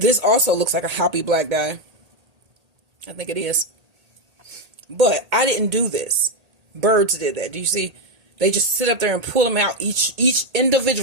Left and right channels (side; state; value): left; late; 1.8 ms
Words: also looks like a hoppy black dye. I think it is. But I didn't do this. Birds did that. Do you see? They just sit up there and pull them out. Each